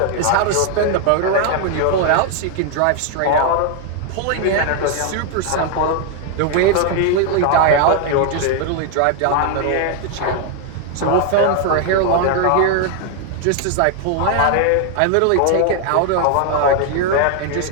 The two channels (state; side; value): different; both; correlation 0.00